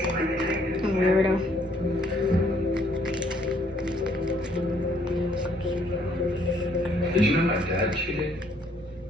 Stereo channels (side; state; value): both; normal; correlation 0.66